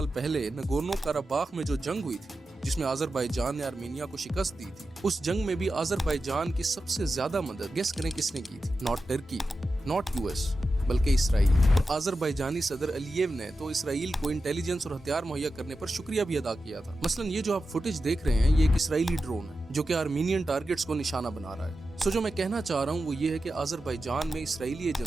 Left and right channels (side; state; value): both; normal; correlation 0.91